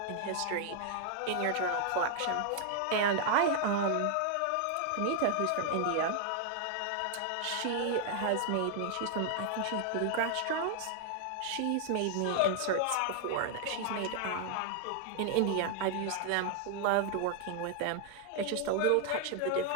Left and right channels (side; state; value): both; different; correlation 0.00